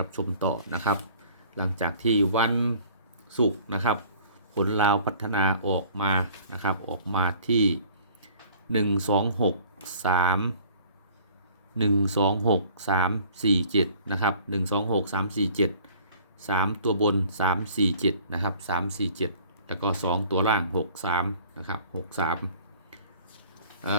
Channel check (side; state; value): both; inverted; correlation -0.51